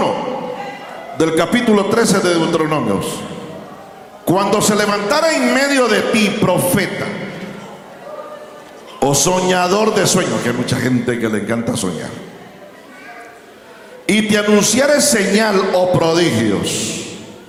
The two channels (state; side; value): identical; both; correlation 1.00